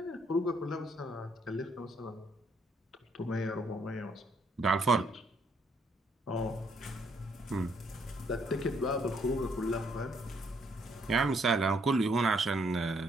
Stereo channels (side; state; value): both; normal; correlation 0.70